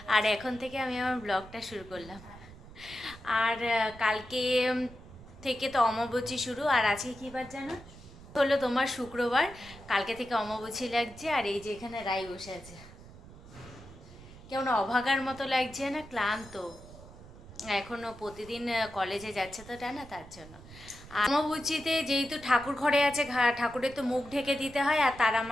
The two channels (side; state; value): right; noise; rumble, 18 dB below the sound